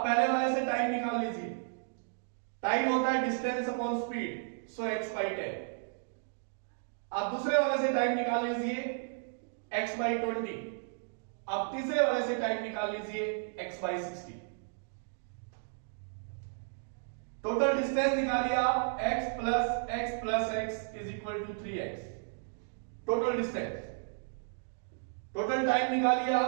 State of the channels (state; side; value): silent; left; digital silence